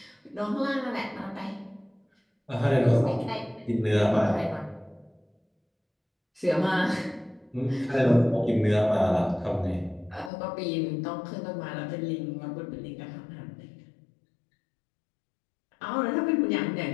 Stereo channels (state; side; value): drops out; right; at 10.3 s